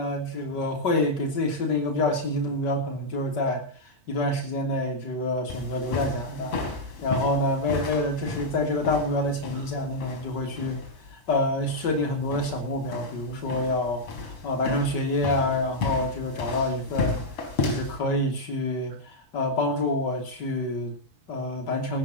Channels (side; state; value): right; late; 5.2 ms